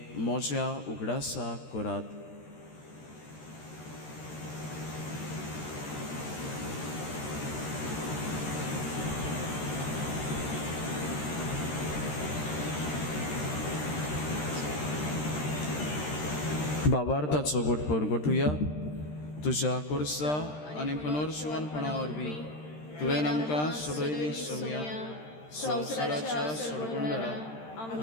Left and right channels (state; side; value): late; right; 13 ms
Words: म्हज्या उगडासाक करात. बाबार्थाचो घोटपर घोटुया. तुज्या कुर्सा आनी पुनर्जीवनपणा वरवीं तुवें आमकां सोडयली सोम्या संवसाराच्या सोडगुंडारा